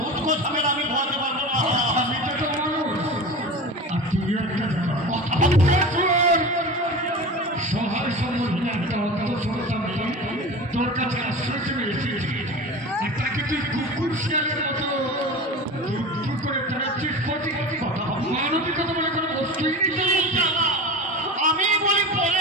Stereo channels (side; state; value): both; normal; correlation 0.31